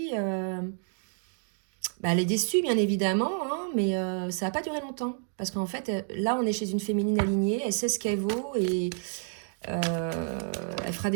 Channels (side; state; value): left; silent; 58 dB below the other